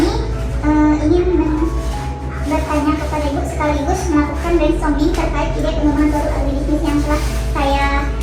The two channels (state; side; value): identical; both; correlation 1.00